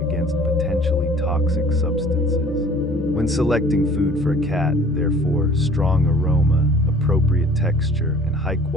against potentially toxic substances. When selecting food for a cat, therefore, strong aroma, appropriate texture, and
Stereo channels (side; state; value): both; normal; correlation 0.51